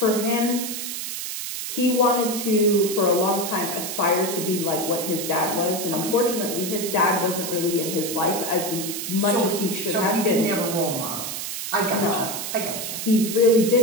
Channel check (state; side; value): noise; right; hiss, 5 dB below the sound